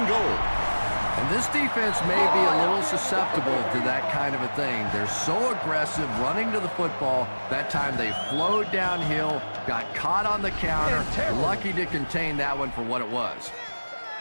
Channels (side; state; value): both; inverted; correlation -1.00